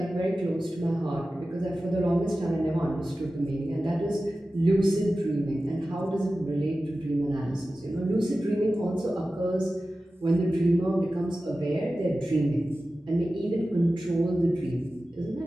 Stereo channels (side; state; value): both; normal; correlation 0.95